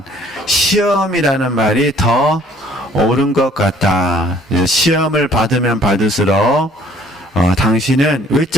시험이라는 말이 더 옳은 것 같다. 시험을 받으면 받을수록 당신은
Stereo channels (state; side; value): normal; both; correlation 0.57